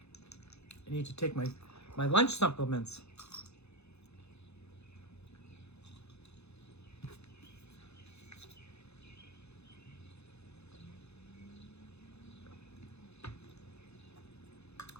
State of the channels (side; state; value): right; late; 0.80 ms